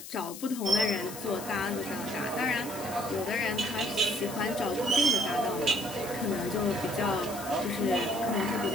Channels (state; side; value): noise; left; hiss, 12 dB below the sound